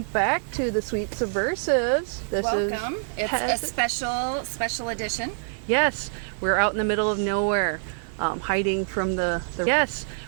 back to the Sweet Subversives. Welcome. It's a special edition. Yes, we're out in the middle of nowhere, hiding from the Yes,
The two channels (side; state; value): left; silent; digital silence